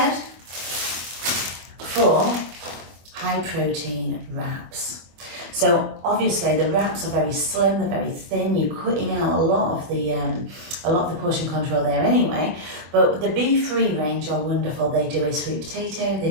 for high protein wraps. So obviously the wraps are very slim, they're very thin. You're cutting out a lot of the portion control there anyway. But the Be-Free range are wonderful. They do a sweet potato, they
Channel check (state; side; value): late; left; 24 ms